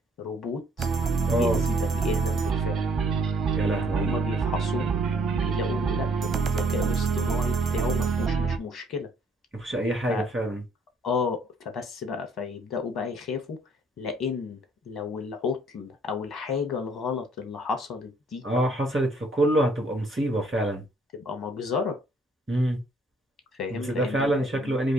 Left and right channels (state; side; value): normal; both; correlation 0.63